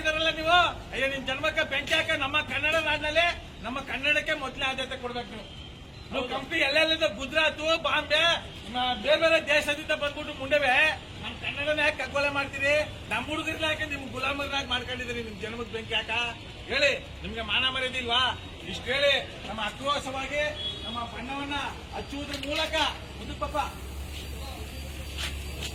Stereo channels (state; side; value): identical; both; correlation 1.00